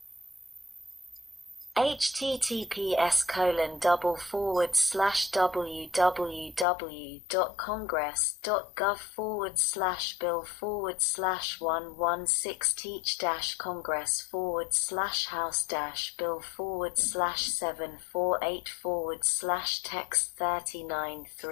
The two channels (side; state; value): right; drops out; at 6.7 s